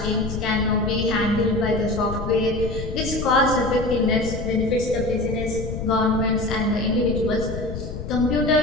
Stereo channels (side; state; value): left; noise; rumble, 7 dB below the sound